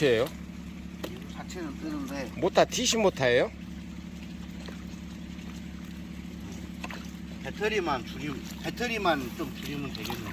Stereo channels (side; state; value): both; identical; correlation 1.00